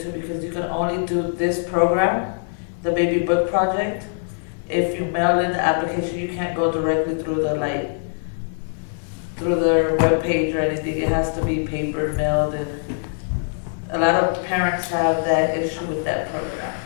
because you can only do this program, the baby book project. If you mail in the application, you can't go directly through through their webpage or anything. It has to be paper mailed, and a lot of parents have that issue with that program.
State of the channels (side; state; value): right; silent; 64 dB below the other